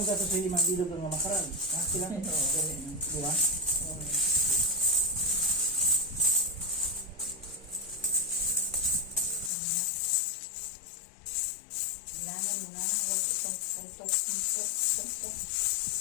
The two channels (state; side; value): drops out; right; at 9.5 s